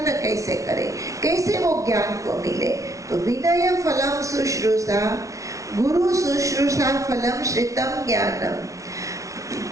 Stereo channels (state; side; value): late; left; 0.16 ms